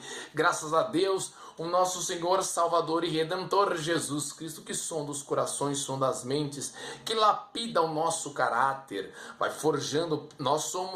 Graças a Deus, o nosso Senhor, Salvador e Redentor Jesus Cristo, que sonda os corações, sonda as mentes, que lapida o nosso caráter, vai forjando. Nós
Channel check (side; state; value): both; identical; correlation 1.00